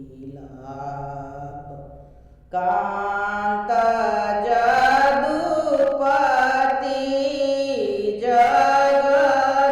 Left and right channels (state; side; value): identical; both; correlation 1.00